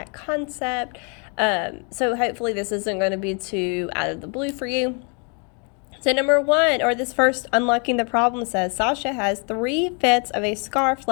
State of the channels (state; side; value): quieter; right; 36.1 dB